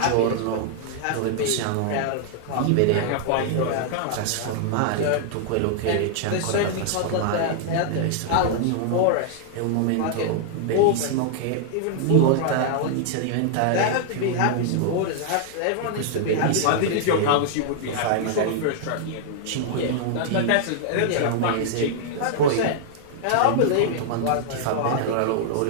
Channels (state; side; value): different; both; correlation -0.01